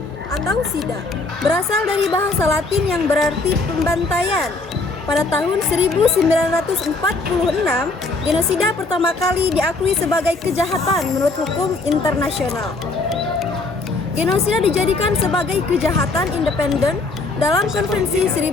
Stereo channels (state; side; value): quieter; right; 3.4 dB